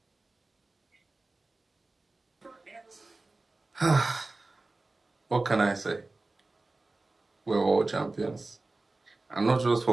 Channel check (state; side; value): quieter; left; 3.2 dB